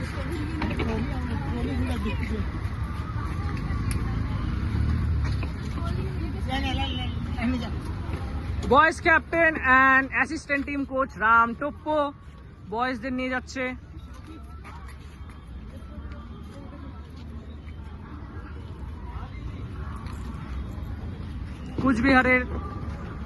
boys captain and assistant team coach Ram Toppo বয়েজদের নিয়ে যাচ্ছে। কুচবিহারের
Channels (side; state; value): both; identical; correlation 1.00